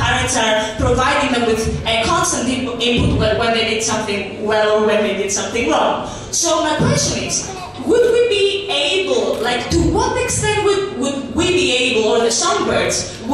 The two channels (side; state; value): both; identical; correlation 1.00